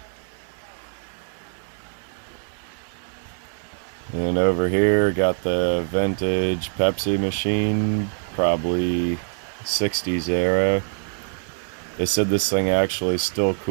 And over here got the vintage Pepsi machine, probably 60s era. They said this thing actually still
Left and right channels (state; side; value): silent; left; digital silence